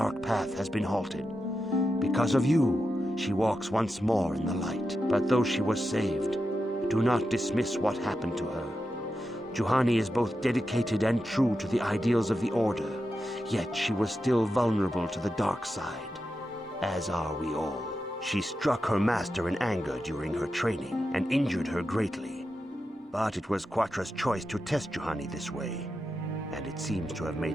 path has been halted. Because of you, she walks once more in the light. But though she was saved, do not dismiss what happened to her. Juhani is both dedicated and true to the ideals of the Order, yet she was still vulnerable to the dark side, as are we all. She struck her master in anger during her training and injured her greatly. But it was Quatra's choice to test Juhani this way, and it seems to have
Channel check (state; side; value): normal; both; correlation 0.89